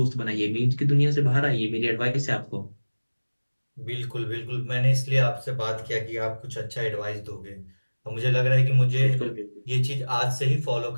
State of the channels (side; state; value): both; inverted; correlation -1.00